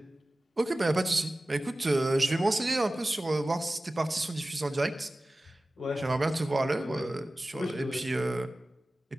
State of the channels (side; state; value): both; normal; correlation 0.96